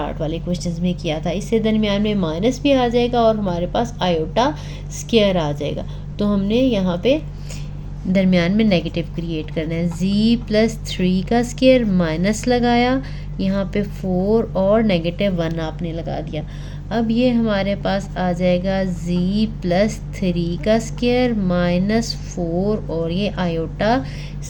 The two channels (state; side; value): identical; both; correlation 1.00